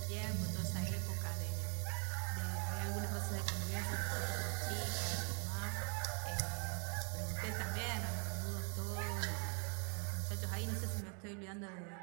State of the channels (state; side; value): quieter; left; 38.1 dB